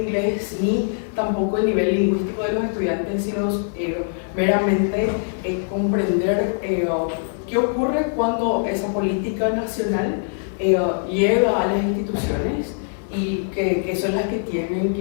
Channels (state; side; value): silent; right; 57 dB below the other